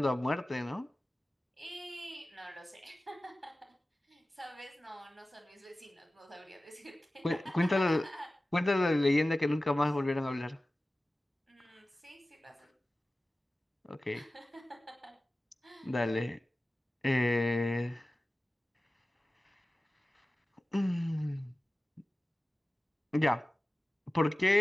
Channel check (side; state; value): both; normal; correlation 0.96